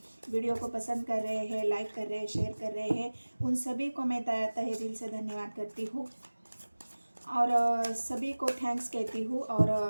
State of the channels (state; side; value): inverted; both; correlation -1.00